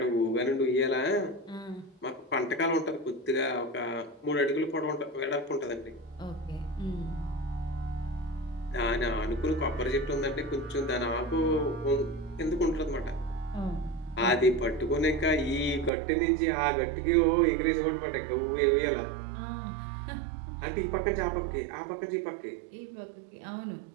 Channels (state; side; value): drops out; left; at 15.9 s